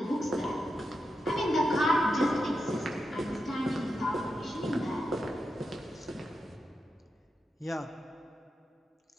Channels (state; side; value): normal; both; correlation 0.87